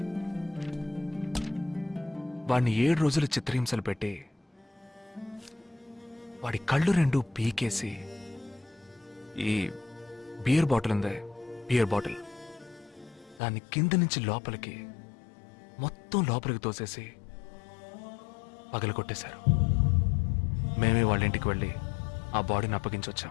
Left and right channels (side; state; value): right; drops out; at 13.4 s